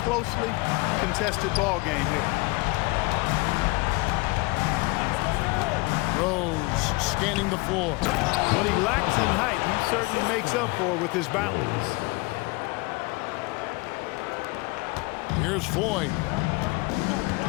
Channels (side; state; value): right; quieter; 25.1 dB